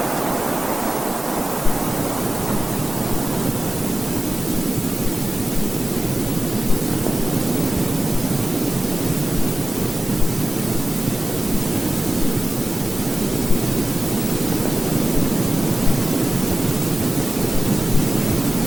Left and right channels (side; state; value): both; normal; correlation 0.96